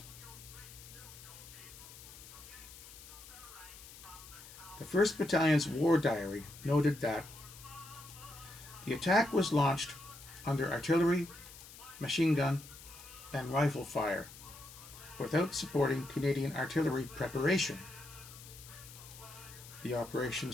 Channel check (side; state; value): left; noise; hiss, 17 dB below the sound